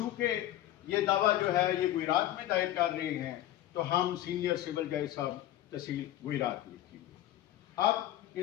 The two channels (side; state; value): right; quieter; 13.7 dB